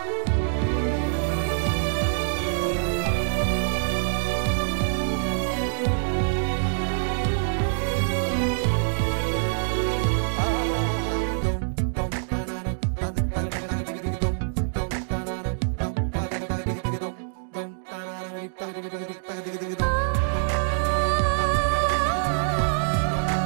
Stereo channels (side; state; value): left; silent; digital silence